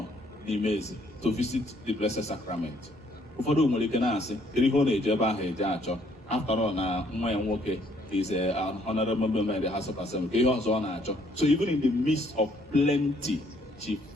the amazing to visit the Blessed Sacrament. After all, now is an honorable member in the House of Assembly. So even in the midst of plenty, she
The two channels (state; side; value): normal; both; correlation 0.66